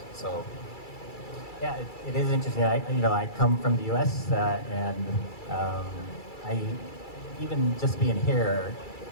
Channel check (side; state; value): right; late; 2.3 ms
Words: So, yeah, it is interesting. I come from the U.S. And I even just being here